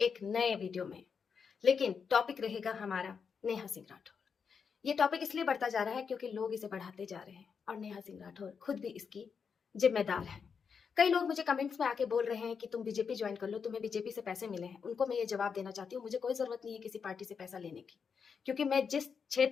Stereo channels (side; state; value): right; quieter; 6.2 dB